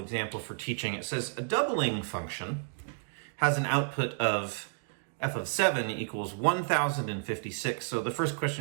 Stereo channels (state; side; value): silent; left; digital silence